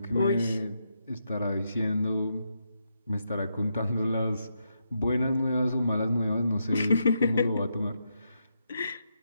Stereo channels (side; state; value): both; inverted; correlation -0.82